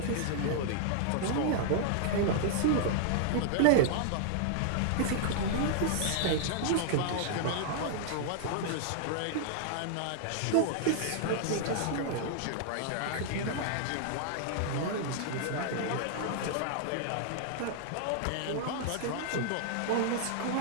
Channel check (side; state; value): both; different; correlation -0.01